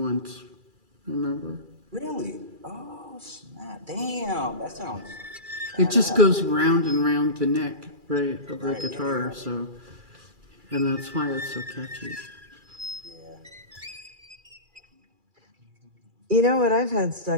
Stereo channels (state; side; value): late; left; 2.3 ms